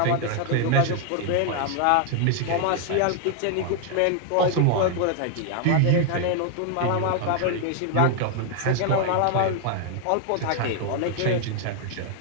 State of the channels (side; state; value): both; different; correlation 0.00